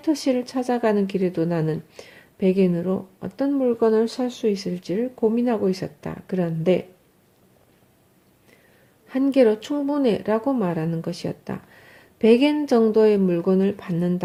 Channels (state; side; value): identical; both; correlation 1.00